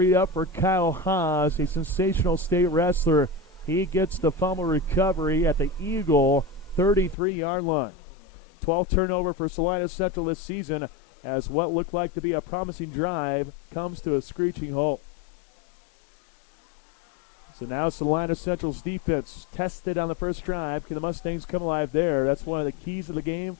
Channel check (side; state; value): right; drops out; at 7.2 s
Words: up for Kyle Haas, a sensational state wrestler. He gets the fumble recovery at the Eagle 33-yard line. 12th turnover for Salina Central this season, as what looked like to be a promising drive comes to a screeching halt. So now Salina Central's defense tested on the first drive. Can the Mustangs come alive there? That's one of the keys of the game